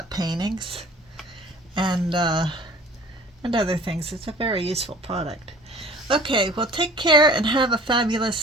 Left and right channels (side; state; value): both; normal; correlation 0.47